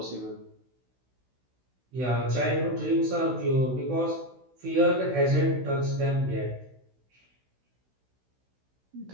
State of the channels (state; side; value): late; left; 16 ms